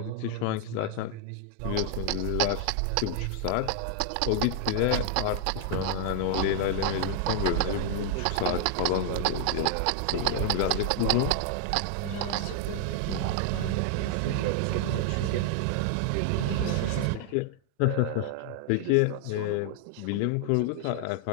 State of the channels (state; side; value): different; both; correlation 0.00